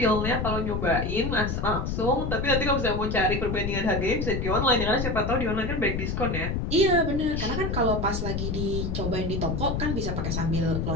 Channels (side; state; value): left; noise; rumble, 2 dB below the sound